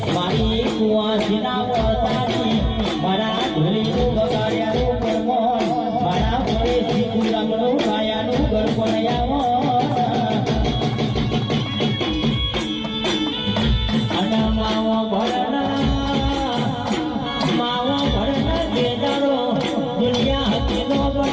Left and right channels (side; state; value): both; identical; correlation 1.00